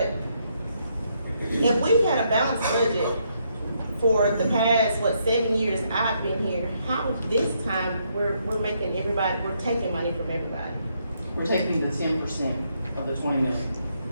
if we've had a balanced budget for the past, 7 years I've been here, how this time we're making everybody, we're taking money from everybody? We're taking the 10% of the 20 million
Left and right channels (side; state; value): both; inverted; correlation -0.76